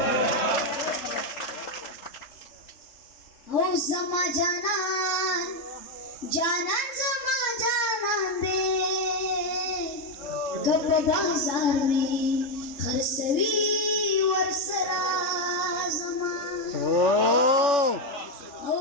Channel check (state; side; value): late; right; 3.3 ms